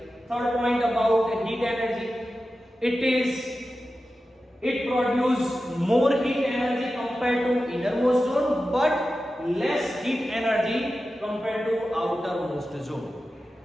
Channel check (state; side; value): normal; both; correlation 0.93